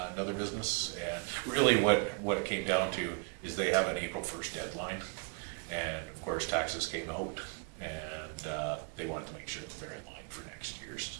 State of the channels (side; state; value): left; quieter; 33.7 dB